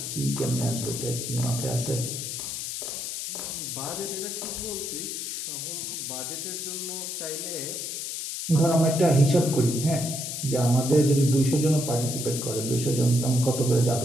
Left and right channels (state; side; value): noise; left; hiss, 5 dB below the sound